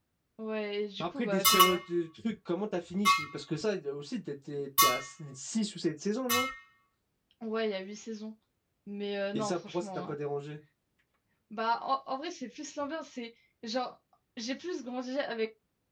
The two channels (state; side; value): identical; both; correlation 1.00